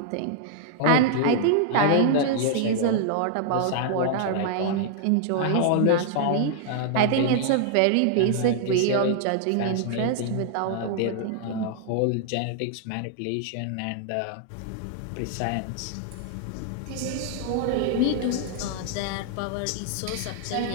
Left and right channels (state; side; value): different; both; correlation -0.01